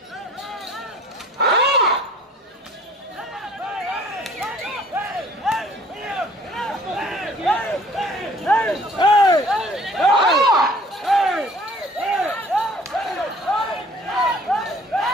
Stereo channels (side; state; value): both; normal; correlation 0.54